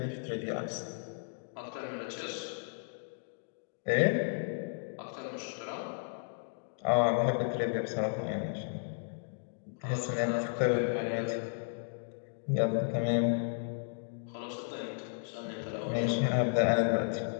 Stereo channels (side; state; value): right; silent; digital silence